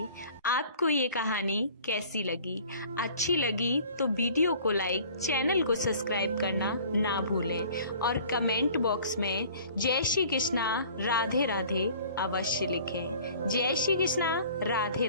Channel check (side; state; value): both; inverted; correlation -0.49